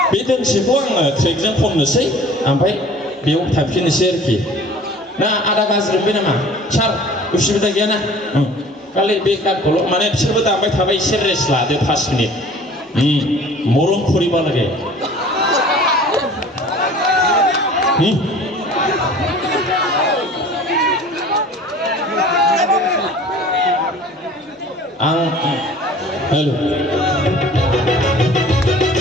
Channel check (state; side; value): normal; both; correlation 0.47